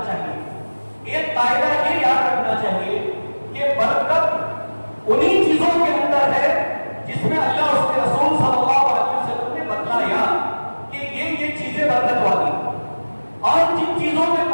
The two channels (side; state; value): both; inverted; correlation -1.00